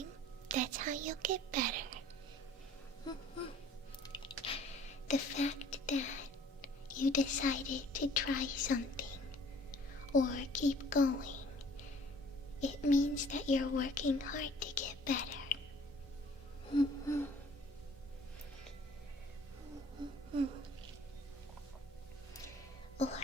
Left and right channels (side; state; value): both; normal; correlation 0.54